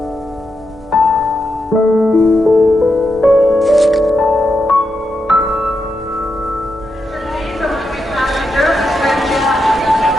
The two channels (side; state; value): both; normal; correlation 0.85